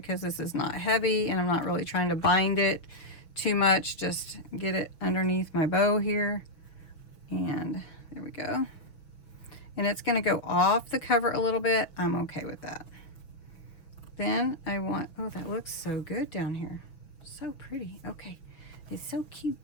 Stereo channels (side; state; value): right; late; 6.2 ms